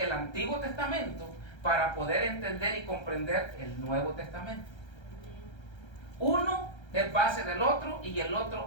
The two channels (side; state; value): right; late; 1.3 ms